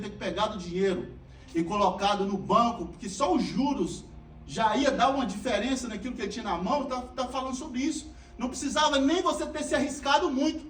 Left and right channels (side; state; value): both; identical; correlation 1.00